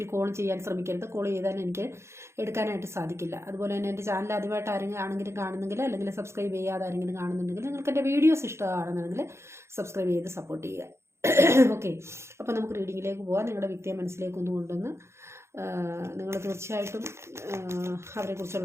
കോൾ ചെയ്യാൻ ശ്രമിക്കരുത്. കോൾ ചെയ്താൽ എനിക്ക് എടുക്കാനായിട്ട് സാധിക്കില്ല. അതുപോലെ തന്നെ എൻ്റെ ചാനൽ ആദ്യമായിട്ട് ആരെങ്കിലും കാണുന്നെങ്കിൽ, അല്ലെങ്കിൽ സബ്സ്ക്രൈബ് ചെയ്യാതെ ആരെങ്കിലും കാണുന്നുണ്ടെങ്കിൽ, നിങ്ങൾക്ക് എൻ്റെ വീഡിയോസ് ഇഷ്ടമാണെന്നുണ്ടെങ്കിൽ സബ്സ്ക്രൈബ് ചെയ്ത് സപ്പോർട്ട് ചെയ്യുക. ഓക്കെ, അപ്പോൾ നമുക്ക് റീഡിങ്ങിലേക്ക് പോകാം. നിങ്ങളുടെ വ്യക്തിയെ മനസ്സിലേക്ക് ഒന്ന് കൊണ്ടുവന്ന് നിങ്ങൾ തീർച്ചയായിട്ടും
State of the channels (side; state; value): left; late; 0.13 ms